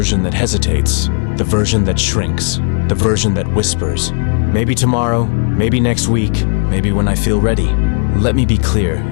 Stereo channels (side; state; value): right; silent; 62 dB below the other